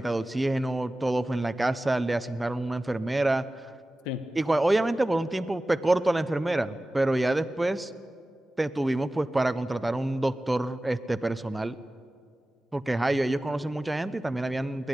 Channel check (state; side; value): normal; both; correlation 0.96